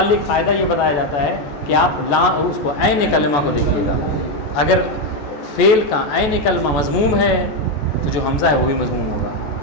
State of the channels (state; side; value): late; right; 14 ms